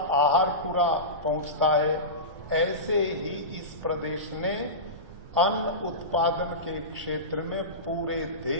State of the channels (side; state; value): both; normal; correlation -0.20